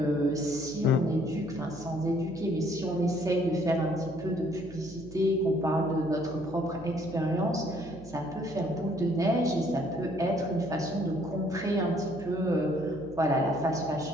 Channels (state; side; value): noise; right; hum, 17 dB below the sound